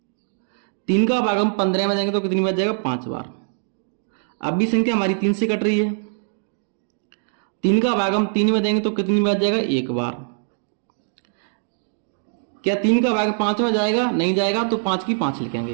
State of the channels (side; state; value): left; silent; digital silence